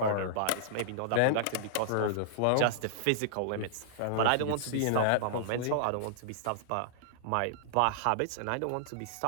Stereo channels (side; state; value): both; different; correlation -0.01